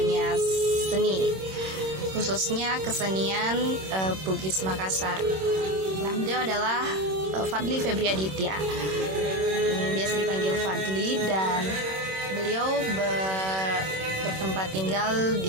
seni, khususnya kesenian Bugis Makassar. Nah, beliau adalah Fadli Febri Aditya, biasa dipanggil Fadli, dan beliau bertempat tinggal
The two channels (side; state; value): left; late; 26 ms